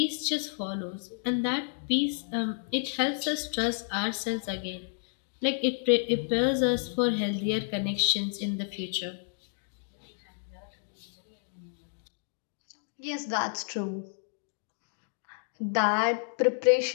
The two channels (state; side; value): silent; right; 57 dB below the other